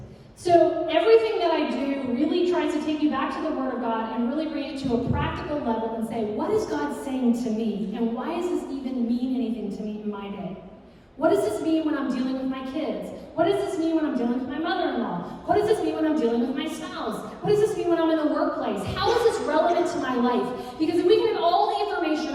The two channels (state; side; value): identical; both; correlation 1.00